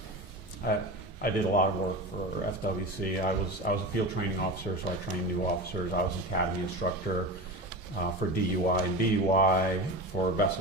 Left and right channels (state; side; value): normal; both; correlation 0.27